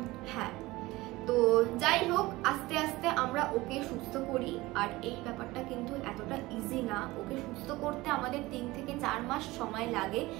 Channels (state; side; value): quieter; left; 19.8 dB